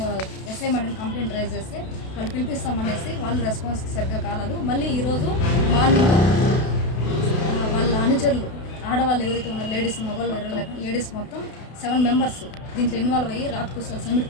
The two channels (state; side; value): late; right; 32 ms